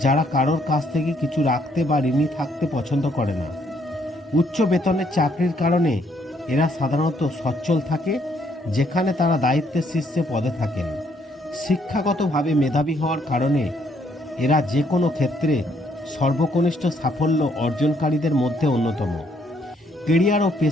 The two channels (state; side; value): normal; both; correlation 0.69